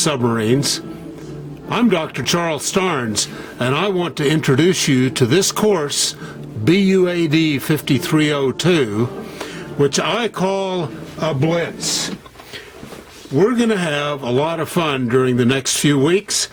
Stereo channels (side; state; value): both; identical; correlation 1.00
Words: submarines. I'm Dr. Charles Starnes, and I want to introduce you to this course, BUAD 5302, which I call a blitz. We're going to have a lot of fun during the next few weeks